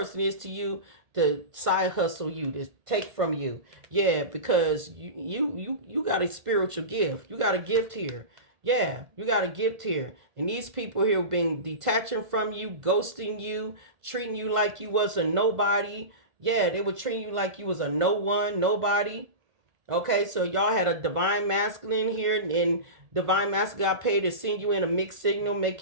is to you, to side hustle you, to take from you. Yeah, because you got a spiritual gift. You got a gift here. Yeah, you got a gift here. And these people here have been detaching from you, ghosting you, treating you like you was a nobody. Yeah, they were treating you like you was a no one, nobody. Okay, so y'all had a divine masculine here, and divine masculine got paid to send you in a mixed signal, make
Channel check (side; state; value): left; late; 1.5 ms